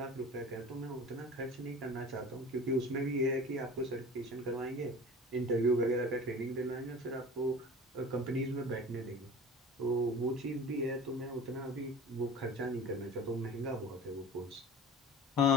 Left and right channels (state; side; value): normal; both; correlation 0.38